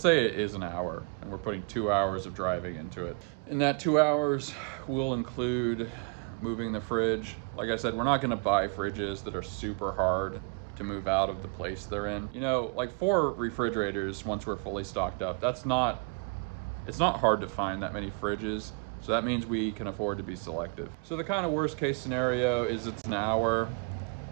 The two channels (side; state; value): left; quieter; 34.0 dB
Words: say it is an hour and we're putting 2 hours of driving into it. In that 2 hours, we'll include moving the fridge. Like I said, we're not gonna buy fridges that are super hard to move out of the place they're in. You know, like 4 refrigerators once we're fully stocked up, it's not hard to find that many fridges. So that means we can afford to be selective. So the kind of worst case scenario is it's an hour